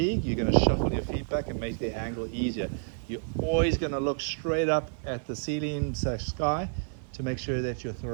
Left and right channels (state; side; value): silent; left; digital silence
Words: you're going to shuffle your feet back and make the angle easier. You're always going to look straight up at the ceiling / sky to make sure that your